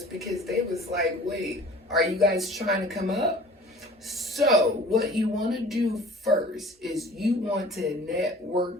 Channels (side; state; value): both; normal; correlation 0.46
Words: because they was like, wait, are you guys trying to come up? So what you want to do first is you want to